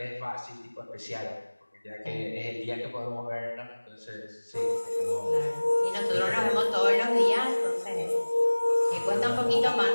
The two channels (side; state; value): both; inverted; correlation -1.00